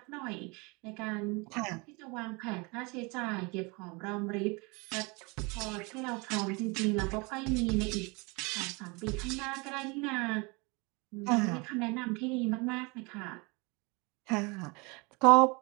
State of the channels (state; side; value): quieter; left; 28.3 dB